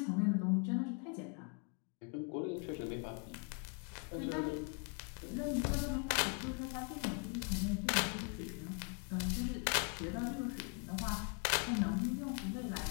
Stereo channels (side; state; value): right; quieter; 37.2 dB